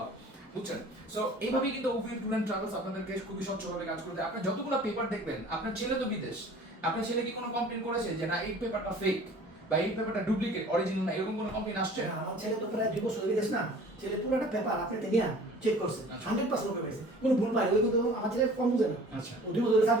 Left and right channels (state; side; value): normal; both; correlation 0.47